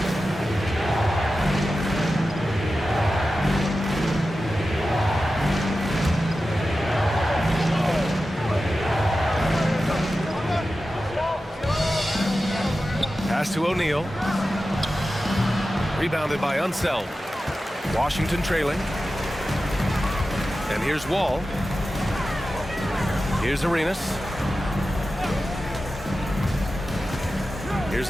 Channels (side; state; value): both; normal; correlation 0.93